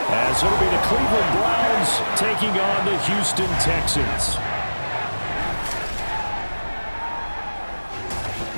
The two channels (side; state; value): both; inverted; correlation -1.00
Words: as it'll be the Cleveland Browns taking on the Houston Texans.